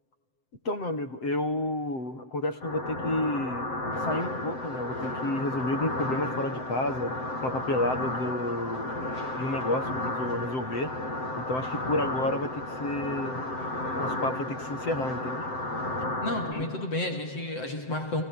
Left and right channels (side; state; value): right; late; 7.8 ms